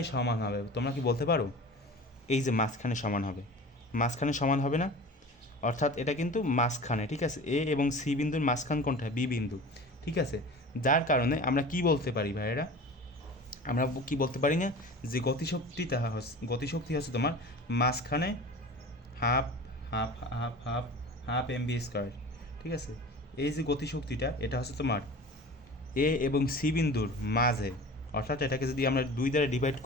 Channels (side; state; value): both; normal; correlation 0.37